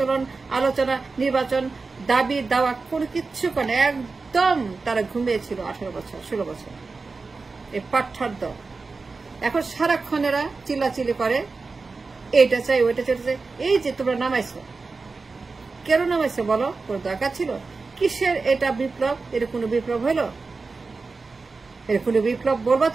আলোচনা, নির্বাচন, দাবি দাওয়া কোনো কিচ্ছু করে, একদম তারা ঘুমিয়েছিল 18 বছর 16 বছর। এই পাঠার দল এখন সারাক্ষণেরা চিল্লাচিল্লি করে, এইটা চাই ওইটা চাই। এই যে তোমরা নামাইছো, কেন নামাইছো বলো? কোন দরকার ছিল? কিসের এটা বিপ্লব? এটা কোনো বিপ্লব হলো? এটা কোনো বিপ্লব বলবা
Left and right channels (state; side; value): quieter; left; 4.1 dB